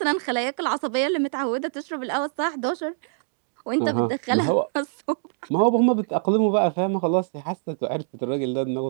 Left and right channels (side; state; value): left; silent; digital silence